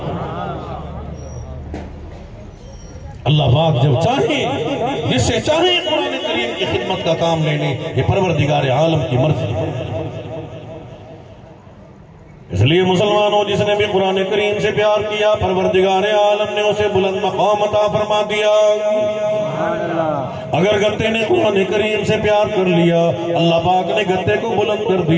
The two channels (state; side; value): identical; both; correlation 1.00